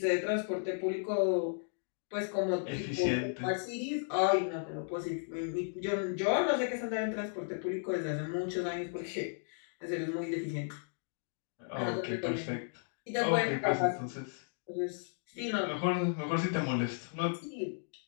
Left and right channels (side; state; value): right; silent; digital silence